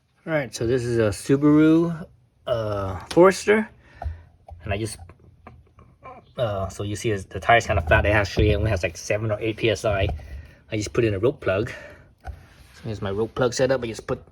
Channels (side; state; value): both; identical; correlation 1.00